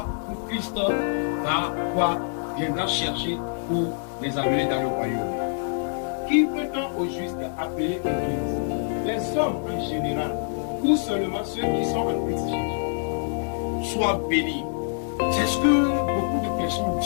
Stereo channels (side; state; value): right; silent; digital silence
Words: que Christ viendra chercher pour les amener dans le royaume. Qui peut-on au juste appeler Église? Les hommes en général, ou seulement ceux qui sont en Christ Jésus? Sois béni. C'est ce que beaucoup de personnes